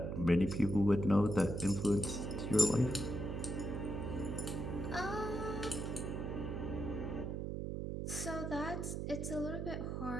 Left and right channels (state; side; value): noise; right; hum, 3 dB below the sound